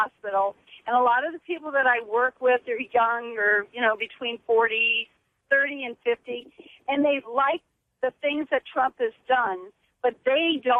and a lot of the people that I work with are young or, between 30 and 50, and they like the things that Trump has done, but they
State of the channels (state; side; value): identical; both; correlation 1.00